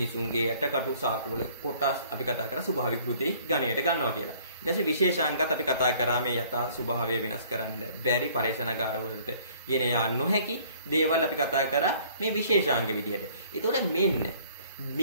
යටකටු, සාකවල කොටස් අපි කතා කරා ස්වභාවික කෘති ගණයට ගන්නවා කියලා. ඊට පස්සේ විශේෂාංගත් අපි කතා කරා මේ යථා ස්වභාවය වෙනස් කරන්න බැරි පරේෂණාගාර වලට ගෙන යා නොහැකි දේවල් අපි කතා කරා මේ විශේෂාංග විදියට. ඒතකොට මෙන්න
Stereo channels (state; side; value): inverted; both; correlation -0.56